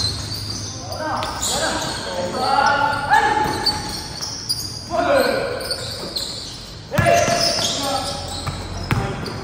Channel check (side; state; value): both; identical; correlation 1.00